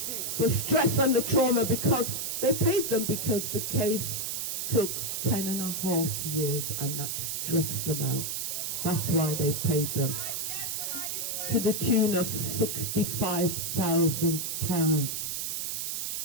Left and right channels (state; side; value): noise; right; hiss, 2 dB below the sound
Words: The stress and the trauma, because they paid them because the case took 10.5 years and that stressed them out. That's why they paid them. To the tune of £65,000